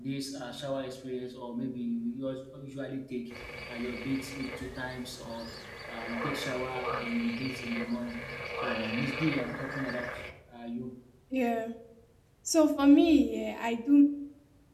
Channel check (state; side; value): identical; both; correlation 1.00